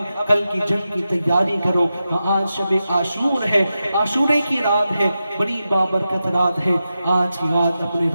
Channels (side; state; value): both; inverted; correlation -0.90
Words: کل کی جنگ کی تیاری کرو. آج شب عاشور ہے, عاشورے کی رات ہے, بڑی بابرکت رات ہے. آج کی رات اپنے